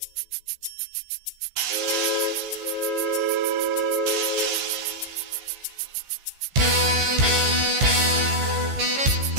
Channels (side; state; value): left; late; 15 ms